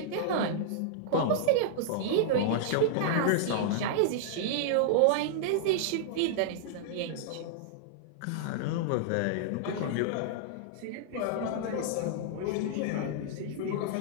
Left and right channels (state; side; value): different; both; correlation -0.01